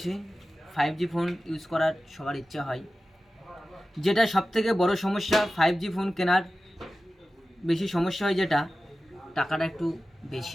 5G ফোন ইউজ করার সবার ইচ্ছা হয়। যেটা সবথেকে বড় সমস্যা 5G ফোন কেনার বেশি সমস্যা হয়, যেটা টাকাটা একটু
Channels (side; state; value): both; normal; correlation 0.95